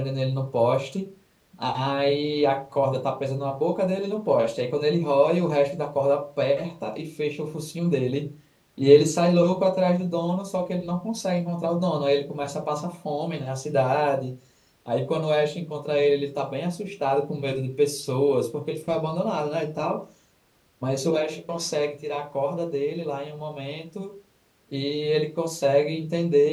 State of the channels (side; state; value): both; identical; correlation 1.00